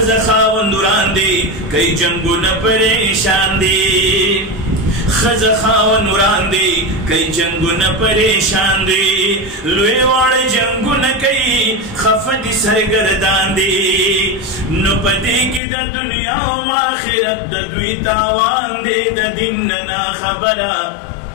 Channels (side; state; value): right; drops out; at 15.6 s